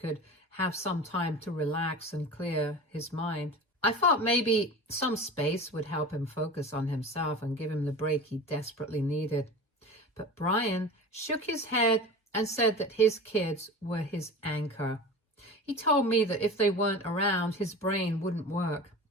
have some time to relax and clear his mind. I thought maybe some space would help him focus on himself and give him the break he desperately needed. But Brian shook his head and said that his kids were his anchor. He told me that if they weren't around, his brain wouldn't work,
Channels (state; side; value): normal; both; correlation 0.34